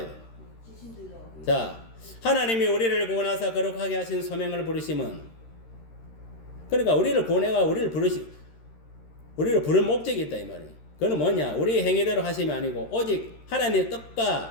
돼. 자, 하나님이 우리를 구원하사 거룩하게 하신 소명을 부르심은 그러니까 우리를 구원해가 우리를 부를 목적이 있다 이 말이에요. 그건 뭐냐? 우리 행위대로 하심이 아니고 오직 하나님의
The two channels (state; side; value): late; right; 13 ms